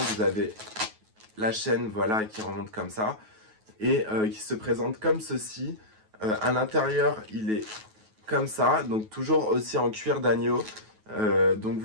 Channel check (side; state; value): left; late; 9.3 ms